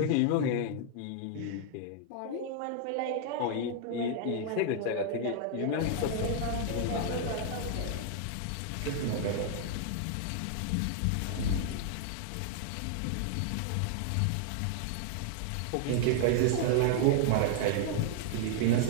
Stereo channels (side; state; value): both; different; correlation -0.01